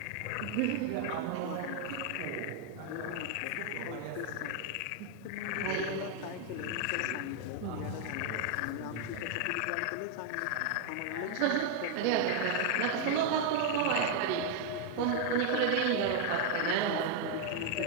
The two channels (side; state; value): both; different; correlation 0.00